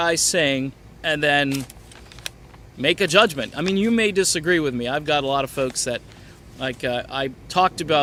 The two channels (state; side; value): identical; both; correlation 1.00